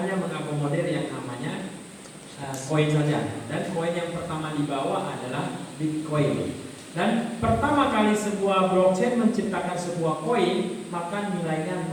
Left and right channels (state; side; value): identical; both; correlation 1.00